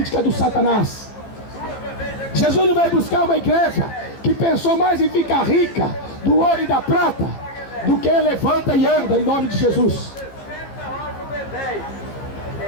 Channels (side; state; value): right; late; 15 ms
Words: do Satanás. Jesus não veio buscar uma igreja que pensou mais em ficar rica do ouro e da prata do que levanta e anda em nome de Jesus.